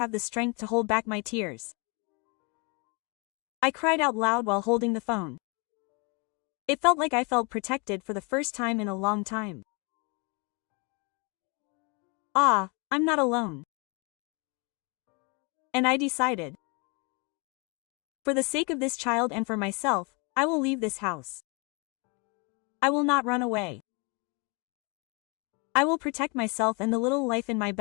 the strength to hold back my tears. I cried out loud while holding the phone. It felt like I felt protected for the first time in a long time. Ah, I'm not alone. And I decided. For the sake of this child and for myself, I will leave this house. I will not run away. I will protect myself and the little life in my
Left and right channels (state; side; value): quieter; right; 31.6 dB